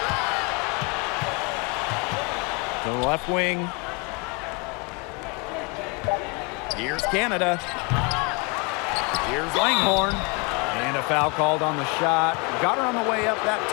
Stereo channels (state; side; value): quieter; right; 30.8 dB